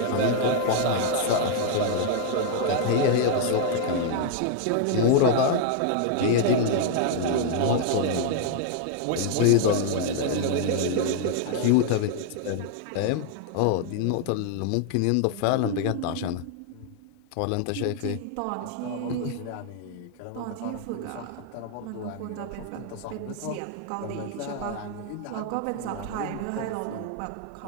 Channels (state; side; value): different; both; correlation 0.00